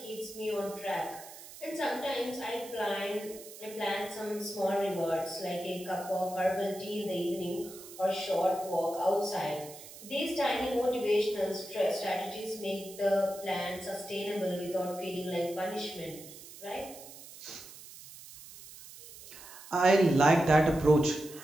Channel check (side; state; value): right; noise; hiss, 16 dB below the sound